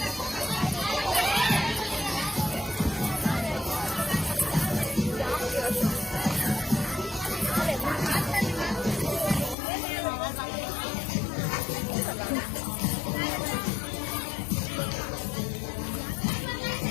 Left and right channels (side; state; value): right; drops out; at 9.6 s